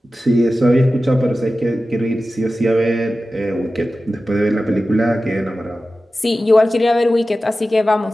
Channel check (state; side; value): normal; both; correlation 0.94